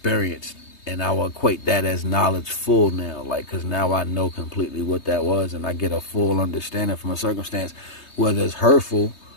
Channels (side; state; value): right; late; 3.2 ms